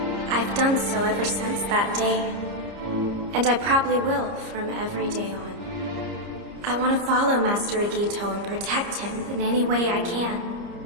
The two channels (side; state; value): left; late; 30 ms